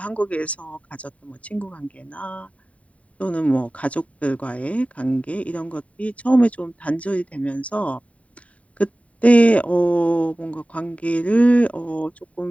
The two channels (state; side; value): late; right; 0.067 ms